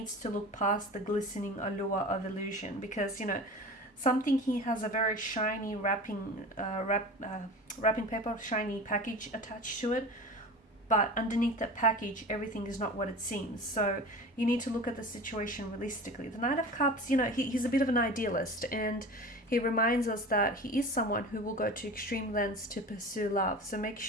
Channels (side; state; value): both; normal; correlation 0.34